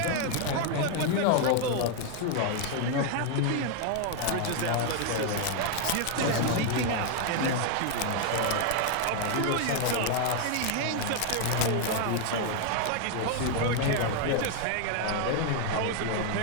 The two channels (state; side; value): different; both; correlation 0.00